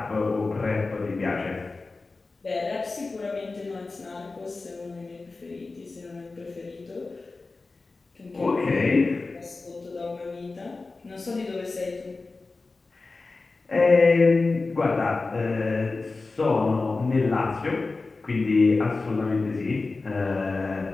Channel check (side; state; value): right; quieter; 3.7 dB